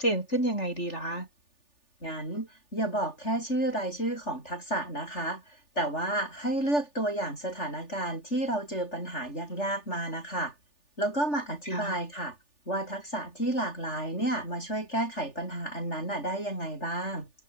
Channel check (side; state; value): right; late; 3.4 ms